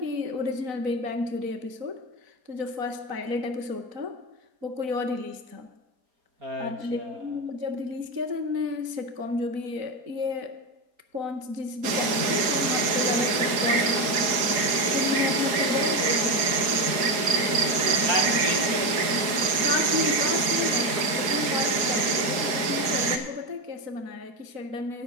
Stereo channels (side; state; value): left; late; 4.7 ms